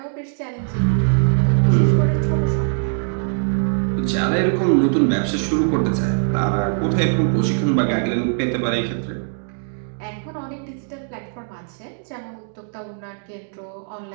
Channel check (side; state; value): left; silent; digital silence